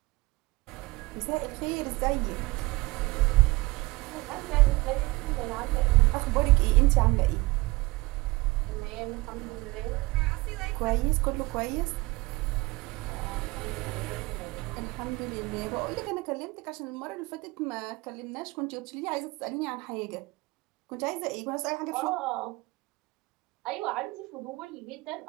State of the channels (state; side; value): quieter; left; 22.5 dB